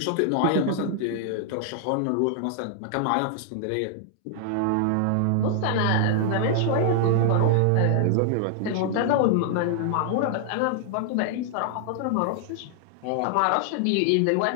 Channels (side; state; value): both; different; correlation 0.00